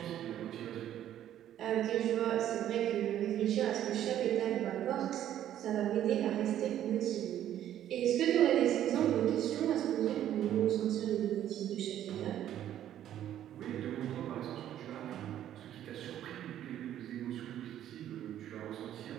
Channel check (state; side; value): quieter; left; 11.4 dB